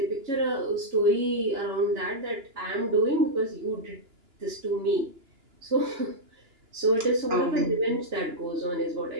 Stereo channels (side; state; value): left; late; 2.9 ms